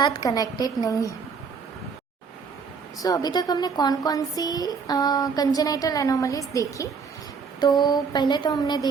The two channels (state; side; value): quieter; left; 5.6 dB